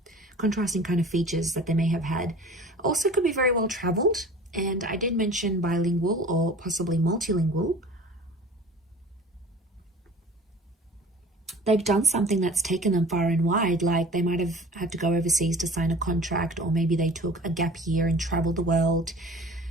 features that they may have had. Also could be very well traveled, and I did mention bilingual or possibly multilingual. They've done something that's taken them far and wide, like they might have had to go overseas to sign a contract, or maybe they took a gap year and traveled the world.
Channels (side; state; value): both; normal; correlation 0.43